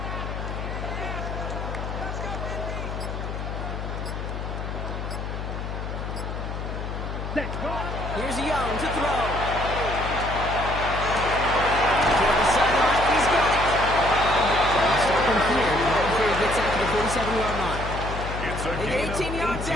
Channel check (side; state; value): left; noise; hum, 5 dB below the sound